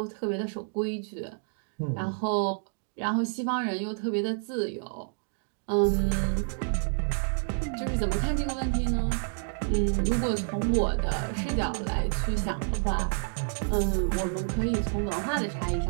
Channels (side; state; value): left; silent; 59 dB below the other